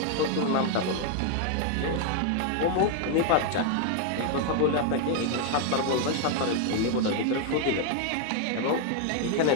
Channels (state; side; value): different; both; correlation 0.00